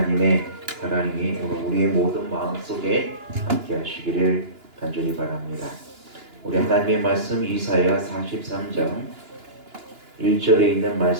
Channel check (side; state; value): left; late; 2.9 ms